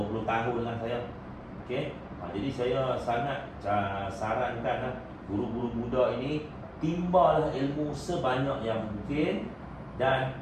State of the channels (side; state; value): both; identical; correlation 1.00